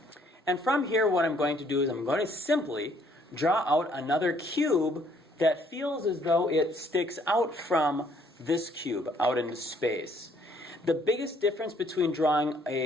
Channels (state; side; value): normal; both; correlation 0.64